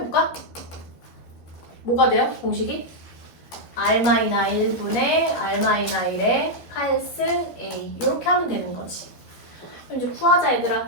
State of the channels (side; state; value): right; late; 12 ms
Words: 뭐가 돼요? 공식이? R-1분의 R-1의 8승 A 이렇게 하면 되는 거지. 그럼 이제 구하자